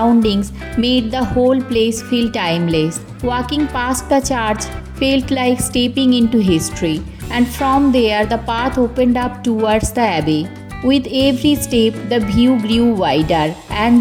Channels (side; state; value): both; identical; correlation 1.00